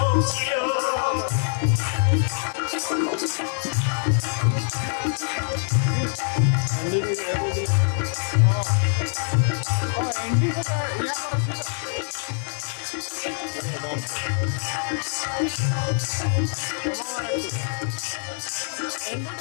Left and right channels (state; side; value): silent; right; digital silence